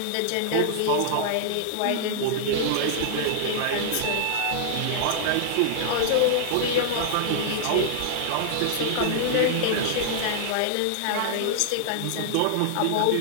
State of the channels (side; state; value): both; different; correlation -0.01